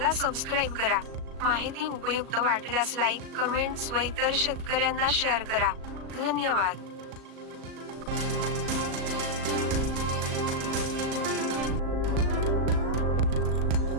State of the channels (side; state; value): left; late; 37 ms